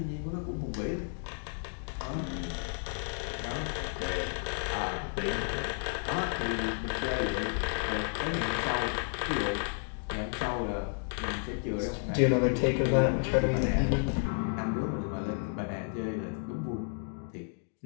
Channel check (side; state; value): right; silent; 56 dB below the other